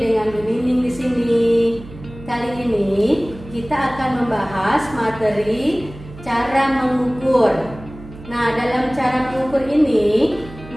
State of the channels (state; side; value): noise; right; hum, 16 dB below the sound